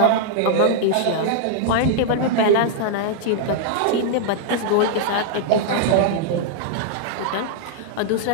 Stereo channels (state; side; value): different; both; correlation -0.01